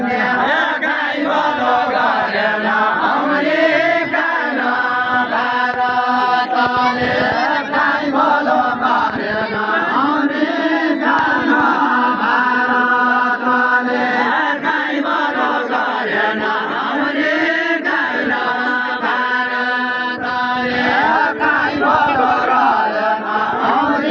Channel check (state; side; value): identical; both; correlation 1.00